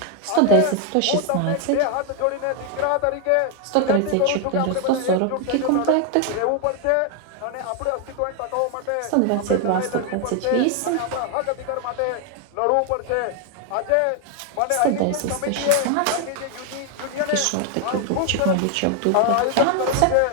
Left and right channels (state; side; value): different; both; correlation 0.00